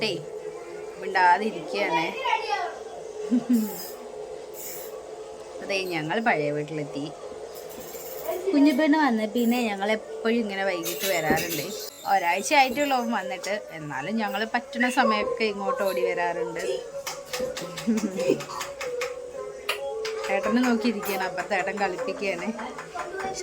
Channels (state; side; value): identical; both; correlation 1.00